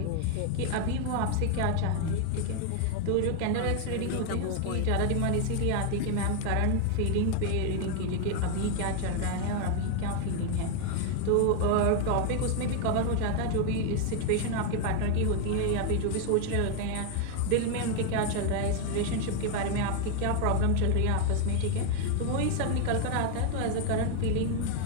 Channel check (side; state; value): both; different; correlation 0.01